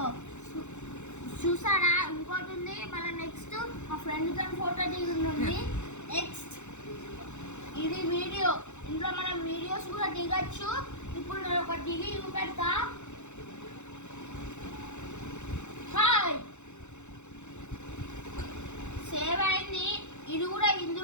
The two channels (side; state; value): right; late; 0.83 ms